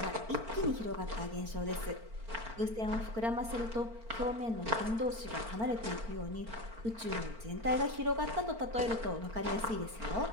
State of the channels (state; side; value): late; left; 4.4 ms